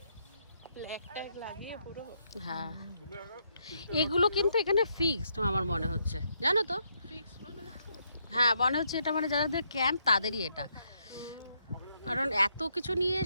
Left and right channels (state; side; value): inverted; both; correlation -0.76